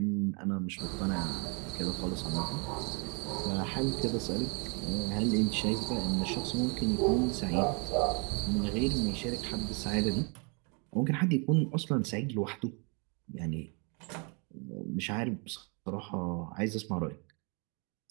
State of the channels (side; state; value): left; quieter; 34.5 dB